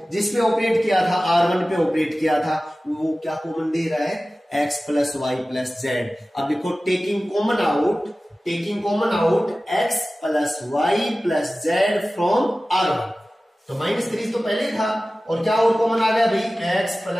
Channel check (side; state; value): both; normal; correlation 0.96